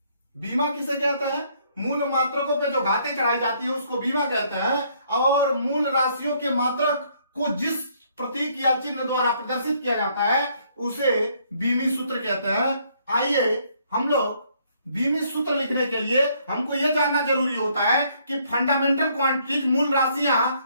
बीमा किसे कहते हैं? मूल मात्रकों पे जो घातें चढ़ाई जाती है उसको बीमा कहते हैं। और मूल राशियों के मात्रक को जिस प्रतीक या चिन्ह द्वारा प्रदर्शित किया जाता है उसे बीमी सूत्र कहते हैं। आइए हम लोग बीमी सूत्र लिखने के लिए हमको यह जानना जरूरी होता है कि फंडामेंटल क्वांटिटीज, मूल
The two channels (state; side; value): inverted; both; correlation -0.67